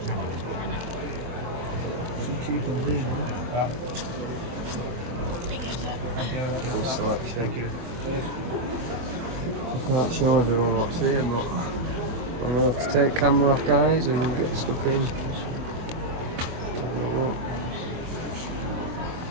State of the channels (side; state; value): left; late; 24 ms